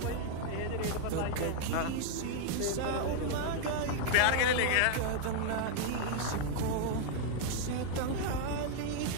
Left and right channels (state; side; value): different; both; correlation 0.00